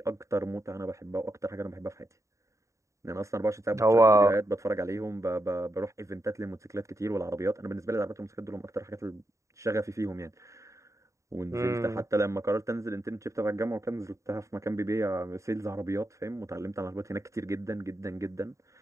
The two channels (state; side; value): late; left; 0.15 ms